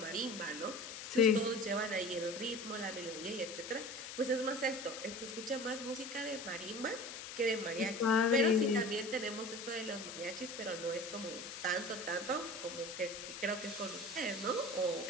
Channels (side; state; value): left; noise; hiss, 9 dB below the sound